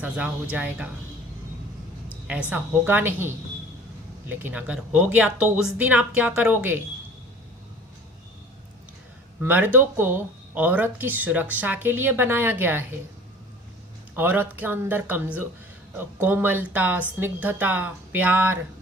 हो जाएगा। ऐसा होगा नहीं, लेकिन अगर हो गया तो उस दिन आप क्या करोगे? मर्दों को औरत की सुरक्षा के लिए बनाया गया है। औरत के अंदर कोमलता, स्निग्धता, प्यार,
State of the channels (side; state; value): both; normal; correlation 0.45